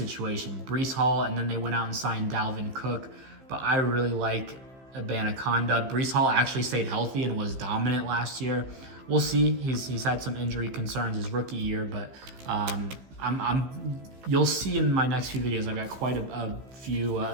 Breece Hall, and then they went out and signed Dalvin Cook. But I really like Abanaconda. Breece Hall actually stayed healthy and was dominant last year. We'll see. He's had some injury concerns his rookie year, but you'll see in my next few videos. I've got quite a few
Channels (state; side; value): late; left; 15 ms